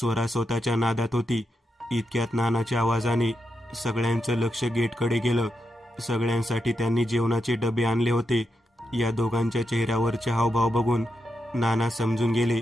स्वतःच्या नादात होती. इतक्यात नानाच्या आवाजाने सगळ्यांचं लक्ष गेटकडे गेलं. सगळ्यांसाठी त्यांनी जेवणाचे डबे आणले होते. या दोघांच्या चेहऱ्यावरचे हावभाव बघून नाना समजून गेले.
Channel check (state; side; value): normal; both; correlation 0.85